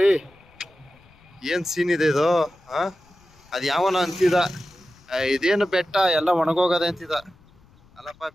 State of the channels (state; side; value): noise; left; rumble, 29 dB below the sound